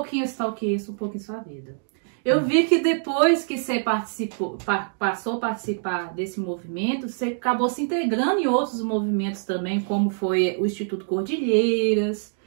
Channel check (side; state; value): left; silent; digital silence